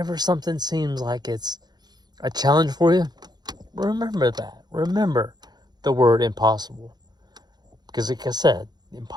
something seems like it's a challenge for you, remember that. Remember the word impossible. Because like I said,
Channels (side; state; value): left; late; 0.20 ms